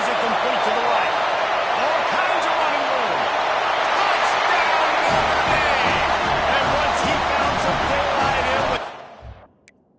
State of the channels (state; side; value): identical; both; correlation 1.00